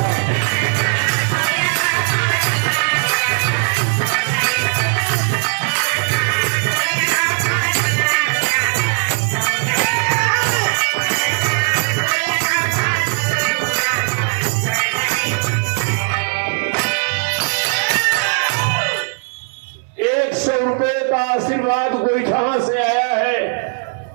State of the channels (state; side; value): silent; left; 56 dB below the other